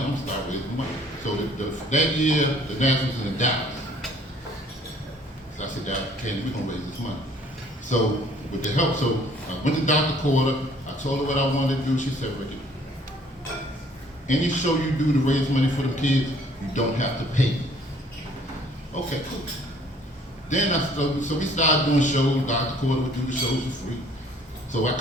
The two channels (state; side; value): normal; both; correlation 0.58